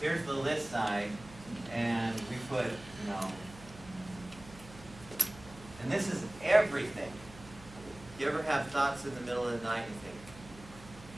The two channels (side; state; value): right; noise; hum, 18 dB below the sound